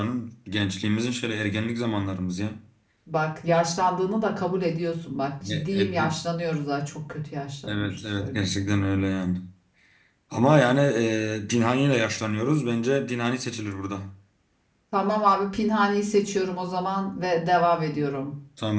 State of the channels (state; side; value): identical; both; correlation 1.00